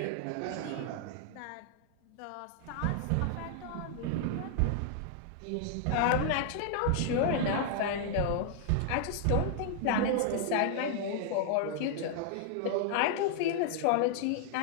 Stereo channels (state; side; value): different; both; correlation 0.00